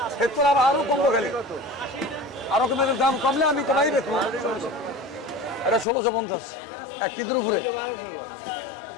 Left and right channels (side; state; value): right; drops out; at 5.9 s